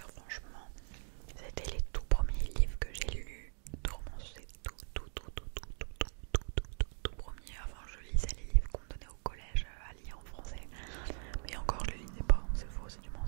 franchement, c'était les tout premiers livres que j'ai lus de romance. C'est tout premier. Avant je lisais les livres qu'on me donnait au collège à lire en français. Mais encore je les lisais pas, c'est faux, c'est du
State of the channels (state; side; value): silent; left; 52 dB below the other